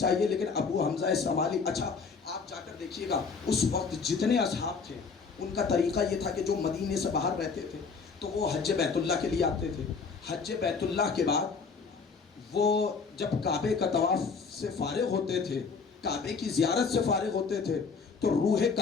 لیکن ابو حمزہ الصمالی, اچھا آپ جا کر دیکھیے گا, اس وقت جتنے اصحاب تھے ان کا طریقہ یہ تھا کہ جو مدینے سے باہر رہتے تھے تو وہ حج بیت اللہ کے لیے آتے تھے. حج بیت اللہ کے بعد وہ جب کعبے کا طواف سے فارغ ہوتے تھے, کعبے کی زیارت سے فارغ ہوتے تھے, تو روح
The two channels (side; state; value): right; quieter; 5.1 dB